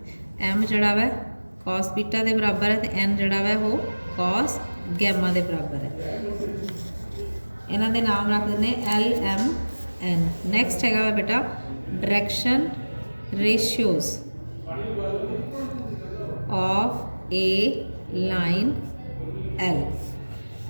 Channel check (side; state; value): both; inverted; correlation -1.00